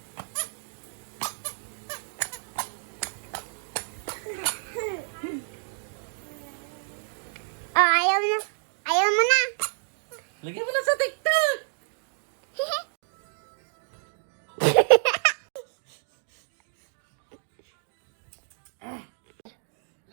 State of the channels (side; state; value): left; silent; digital silence